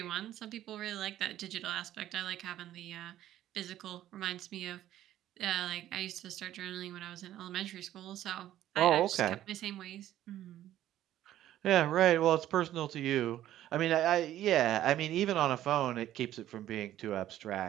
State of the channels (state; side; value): quieter; left; 12.8 dB